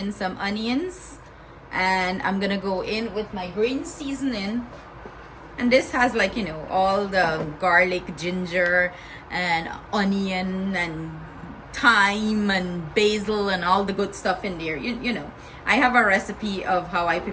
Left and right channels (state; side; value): identical; both; correlation 1.00